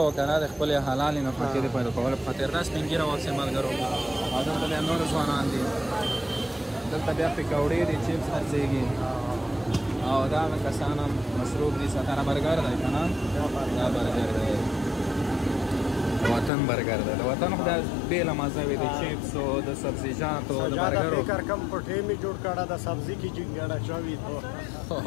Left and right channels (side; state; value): right; drops out; at 16.5 s